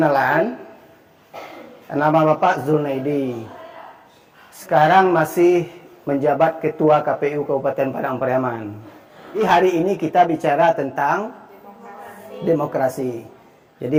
nama Bapak Zulnaidi. Sekarang masih menjabat Ketua KPU Kabupaten Padang Pariaman. Di hari ini kita bicara tentang demokrasi.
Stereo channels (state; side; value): identical; both; correlation 1.00